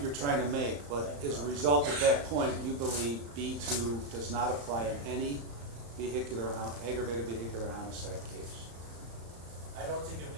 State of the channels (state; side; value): late; left; 35 ms